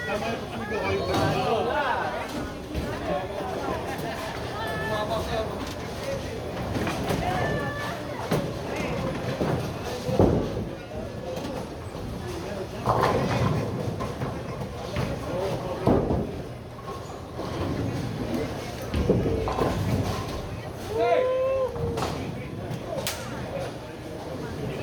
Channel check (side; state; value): both; identical; correlation 1.00